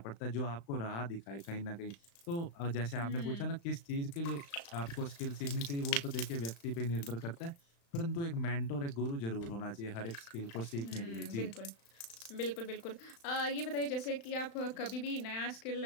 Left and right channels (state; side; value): late; right; 35 ms